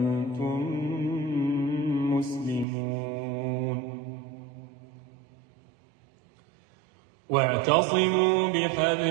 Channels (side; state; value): left; drops out; at 2.7 s